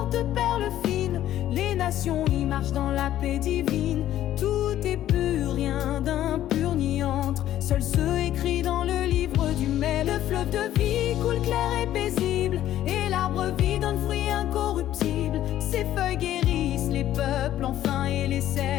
de perles fines, Les nations y marchent dans la paix divine. Tout est pur, rien d'impur ni entre. Seul ceux écrits dans le livre du mai. Le fleuve de vie coule clair et paisible, et l'arbre vie donne fruit incorruptible. Ses feuilles guérissent les peuples enfin, et les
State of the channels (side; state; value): right; quieter; 12.6 dB